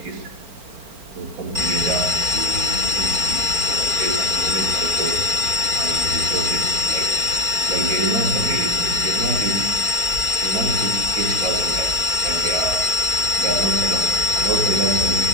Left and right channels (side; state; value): left; late; 4.4 ms